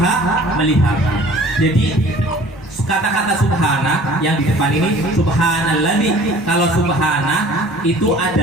melihat. Jadi kata-kata subhana yang di depan ini subhanalladzi, kalau subhana itu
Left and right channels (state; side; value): normal; both; correlation 0.49